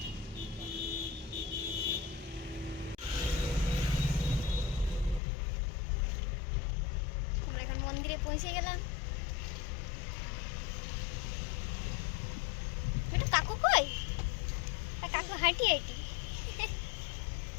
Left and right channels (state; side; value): drops out; right; at 5.2 s